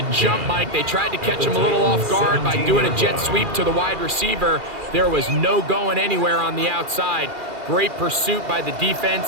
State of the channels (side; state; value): left; late; 2.4 ms